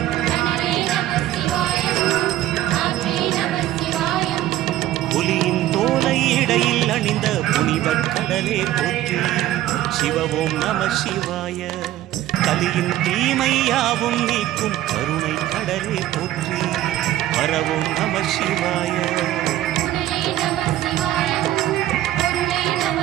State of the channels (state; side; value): quieter; left; 13.8 dB